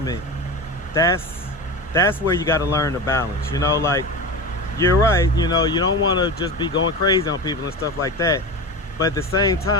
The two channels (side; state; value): both; normal; correlation 0.25